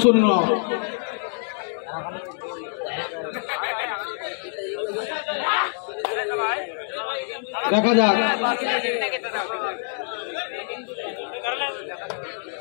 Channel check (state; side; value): silent; right; digital silence